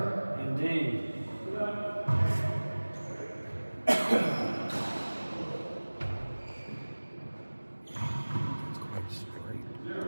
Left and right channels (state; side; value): inverted; both; correlation -1.00